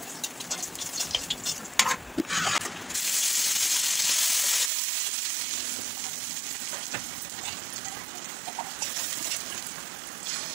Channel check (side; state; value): left; drops out; at 4.7 s